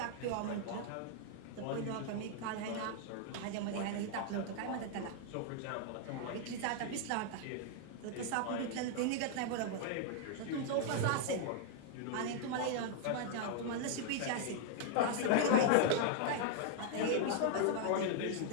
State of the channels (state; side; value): different; both; correlation 0.00